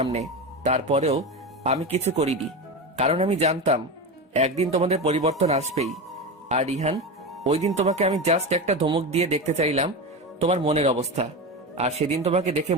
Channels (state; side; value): normal; both; correlation 0.20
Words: তারপরেও আমি কিছু করিনি, কারণ আমি জানতাম একদিন তোমাদের পরিবর্তন আসবেই। আর রিহান, ওই দিন তোমাকে আমি জাস্ট একটা ধমক দিয়ে দেখতে চাইলাম তোমার মনের অবস্থা, আর সেদিন তোমাকে দেখে